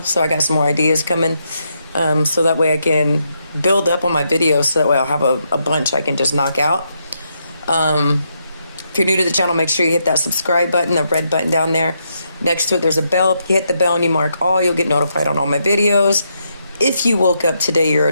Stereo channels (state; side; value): inverted; both; correlation -0.80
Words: so I got some more ideas coming. So that way I can build up on my videos, so that way I'll have a bunch I can just knock out. If you're new to the channel, make sure you hit that subscribe button, the red button down there. Next to it, there's a bell. If you hit the bell and you mark all, you'll get notified on all my videos. If you woke up today, you're